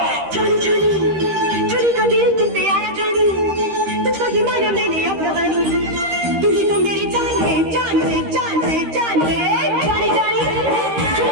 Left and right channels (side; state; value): left; late; 13 ms